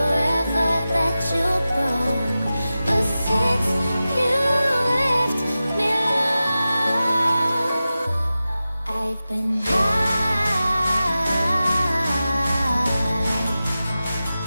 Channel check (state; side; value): inverted; both; correlation -0.94